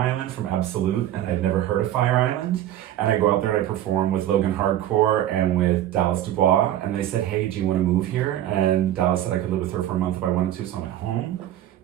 from Absolute, and I'd never heard of Fire Island. And I go out there and I perform with Logan Hardcore and with Dallas Dubois. And they said, hey, do you want to move here? And Dallas said I could live with her for a month if I wanted to. So I went home,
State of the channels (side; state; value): left; quieter; 12.4 dB